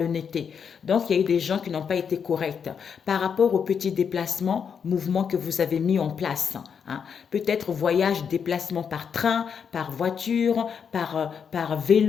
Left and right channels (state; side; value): quieter; right; 6.9 dB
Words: Donc, il y a eu des gens qui n'ont pas été corrects par rapport aux petits déplacements, mouvements que vous avez mis en place. Peut-être voyage, déplacement par train, par voiture, par